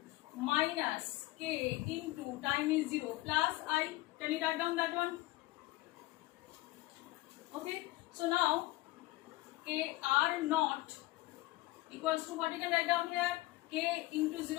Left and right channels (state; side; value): quieter; right; 18.7 dB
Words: minus K into time is 0 plus I. Can you write down that one? Okay. So now K R naught equals to what you can write down here? K into